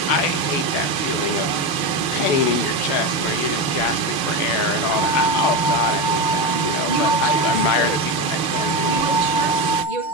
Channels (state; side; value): late; right; 6.7 ms